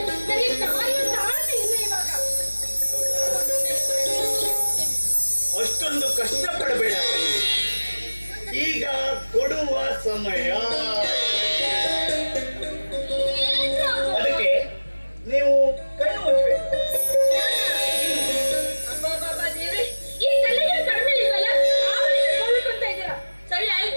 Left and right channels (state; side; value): inverted; both; correlation -1.00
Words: ನನಗೆ ತಾಳ್ಮೆ ಇಲ್ಲ ಇವಾಗ. ಅಷ್ಟೊಂದು ಕಷ್ಟಪಡಬೇಡ, ಈಗ ಕೊಡುವ ಸಮಯ. ಅದಕ್ಕೆ ನೀವು ಕಣ್ಣು ಮುಚ್ಚಬೇಕು. ಈ ತಲೆಗೆ ಕಡಿಮೆ ಇಲ್ವಲ್ಲ, ಅಂತ ಇದ್ದೀರಾ. ಸರಿ